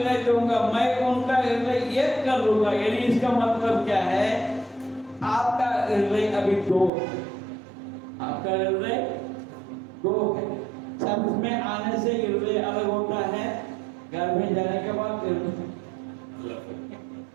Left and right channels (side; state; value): left; drops out; at 6.9 s